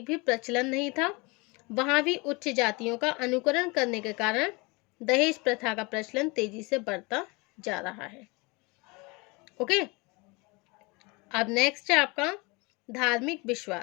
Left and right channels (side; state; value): right; quieter; 27.0 dB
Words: भी प्रचलन नहीं था, वहां भी उच्च जातियों का अनुकरण करने के कारण दहेज प्रथा का प्रचलन तेजी से बढ़ता जा रहा है. ओके, अब नेक्स्ट है आपका धार्मिक